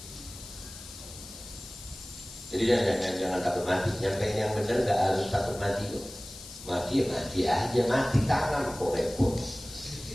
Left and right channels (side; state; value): left; noise; hiss, 14 dB below the sound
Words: Jadi jangan takut mati. Nyampein yang benar gak harus takut mati kok. Mati ya mati aja, mati tangan kok repot.